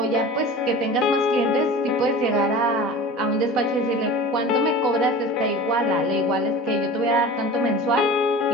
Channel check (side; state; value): both; normal; correlation 0.37